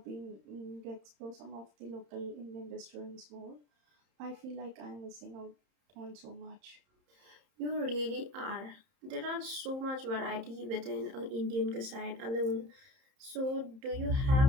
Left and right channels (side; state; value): left; late; 30 ms